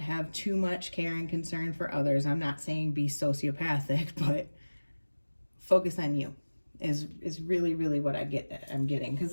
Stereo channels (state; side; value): inverted; both; correlation -1.00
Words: too much care and concern for others. I'm not saying be sociopathic, but focus on you is really, really what I'm getting. Because,